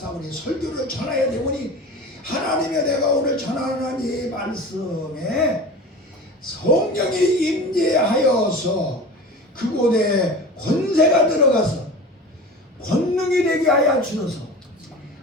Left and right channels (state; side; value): normal; both; correlation 0.34